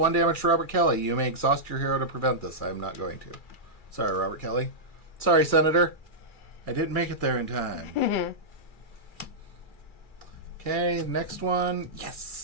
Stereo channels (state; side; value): late; right; 2.4 ms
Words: damage to Robert Kelly. You may exhaust your hero to prevent this. I am not going to. Sorry, Robert Kelly. Sorry, Senator. I didn't make it there in time. Okay, next one.